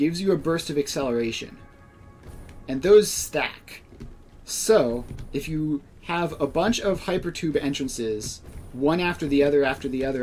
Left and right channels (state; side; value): identical; both; correlation 1.00